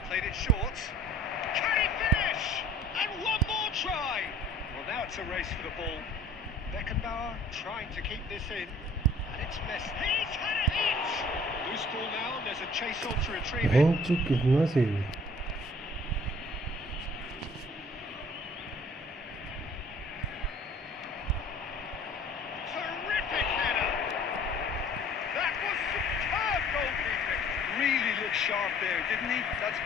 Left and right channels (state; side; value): normal; both; correlation 0.52